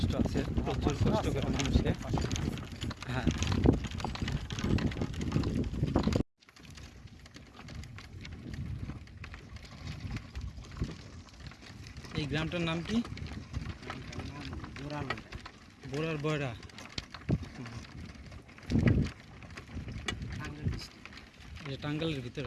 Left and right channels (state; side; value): identical; both; correlation 1.00